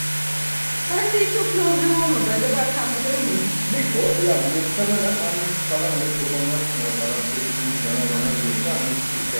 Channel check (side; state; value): both; inverted; correlation -1.00